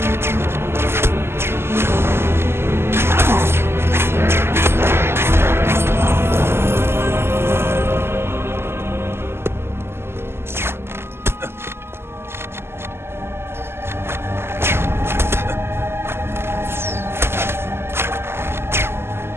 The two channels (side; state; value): left; late; 0.12 ms